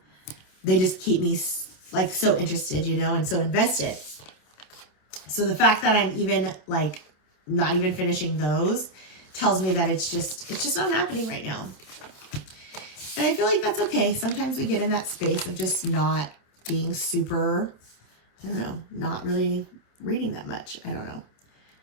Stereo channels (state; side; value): late; right; 27 ms